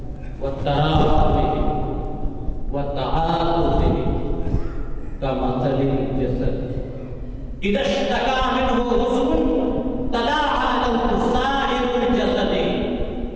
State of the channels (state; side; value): identical; both; correlation 1.00